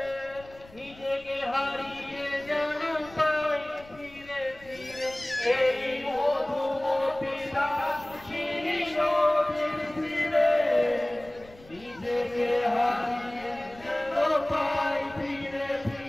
নিজেকে হারিয়ে যেন পাই ফিরে ফিরে। এই মধুমতি ধান সেই নদীর তীরে নিজেকে হারিয়ে যেন পাই ফিরে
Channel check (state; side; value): noise; left; rumble, 22 dB below the sound